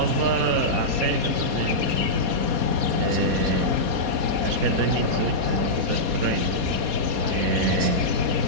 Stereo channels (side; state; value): left; late; 4.2 ms